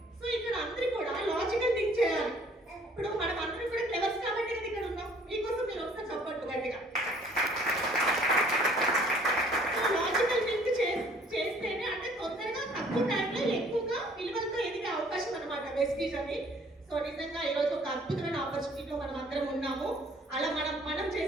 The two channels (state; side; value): normal; both; correlation 0.57